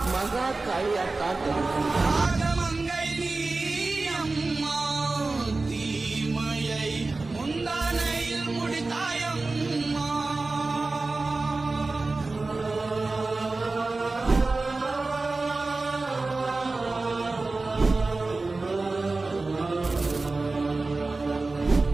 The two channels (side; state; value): left; quieter; 3.5 dB